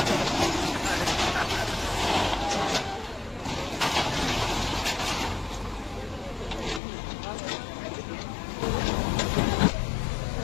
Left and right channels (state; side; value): drops out; right; at 6.8 s